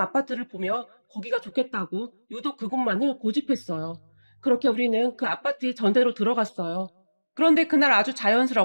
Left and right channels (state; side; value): inverted; both; correlation -1.00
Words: 보며 거기가 좋겠다고 유독 그곳만을 고집했어요. 그렇게 우리는 그 아파트에 전대로 들어갔어요. 그런데 그날 아주